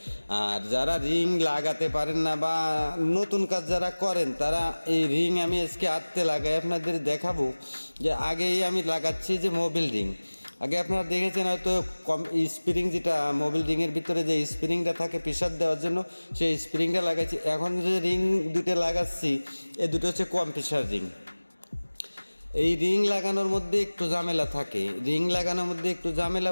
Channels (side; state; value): both; inverted; correlation -1.00